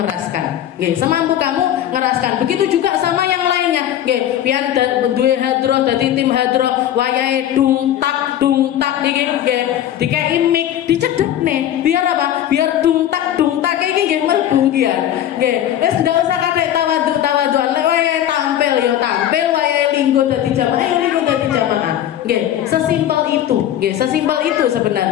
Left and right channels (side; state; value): right; quieter; 11.4 dB